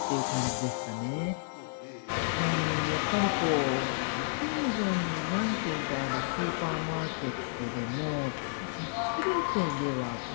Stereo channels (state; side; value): silent; right; 57 dB below the other